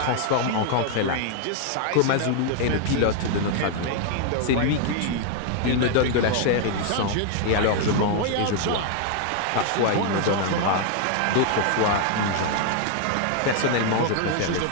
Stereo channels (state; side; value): different; both; correlation 0.00